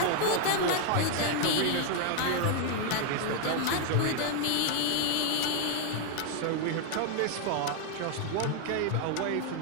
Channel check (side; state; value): both; different; correlation 0.00